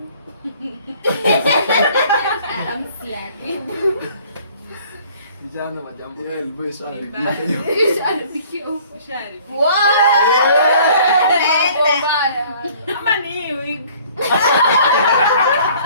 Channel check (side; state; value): both; inverted; correlation -0.55